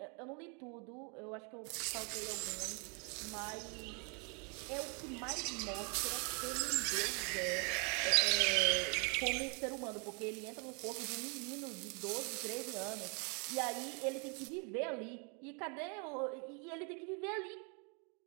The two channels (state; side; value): quieter; left; 35.8 dB